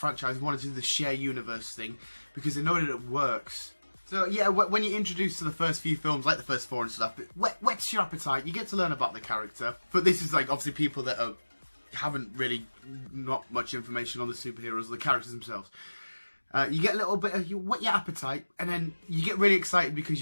wanting to do the share universe thing, because they know that it works. So yeah, when you're introduced to the first few films, like the first 4 and stuff, it whets your appetite. You get to learn about the character. But this is obviously people that haven't really not much information on the superheroes or the characters themselves. You get a little bit you whet your appetite, and then you get really excited because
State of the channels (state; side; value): inverted; both; correlation -1.00